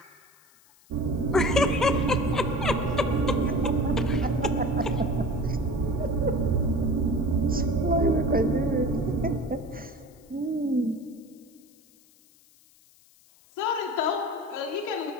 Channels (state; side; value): noise; left; hiss, 29 dB below the sound